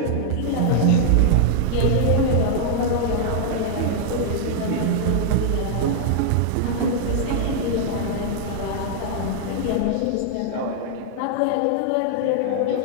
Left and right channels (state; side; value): different; both; correlation -0.01